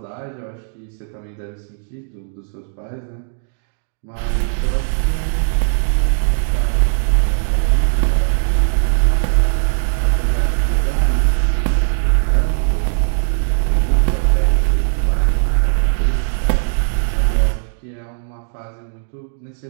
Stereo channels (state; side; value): silent; left; digital silence